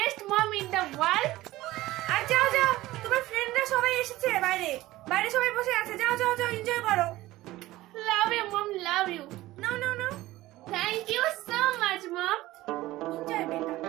mom in the world. আর যাও যাও, তোমার ফ্রেন্ডরা সবাই এসেছে, বাইরে বাইরে সবাই বসে আছে, যাও যাও যাও, এনজয় করো। Love you mom, love you. No no no, thank you so much mom. Enjoy বেটা।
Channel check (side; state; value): left; quieter; 17.2 dB